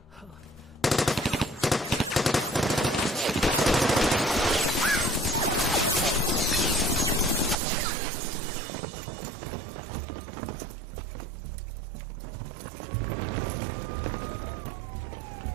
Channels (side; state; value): left; drops out; at 7.6 s